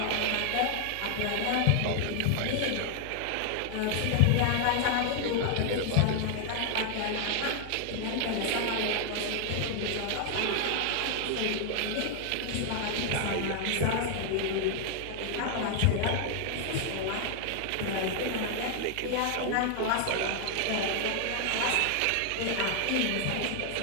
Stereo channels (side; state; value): both; different; correlation 0.00